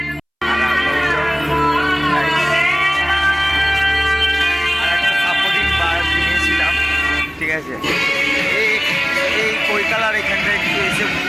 ঠিক আছে, এই কৈকালার এখানটা একটু এসে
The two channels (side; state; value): both; identical; correlation 1.00